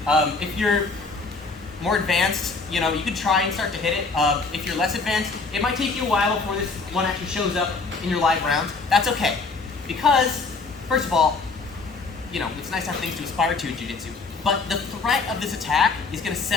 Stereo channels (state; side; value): quieter; right; 4.1 dB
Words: If you're more advanced, you can try and start to hit it. If you're less advanced, it might take you a while before this one actually shows up in your live rounds. That's okay. Because, first of all, it's nice to have things to aspire to in Jiu-Jitsu. But the threat of this attack is going to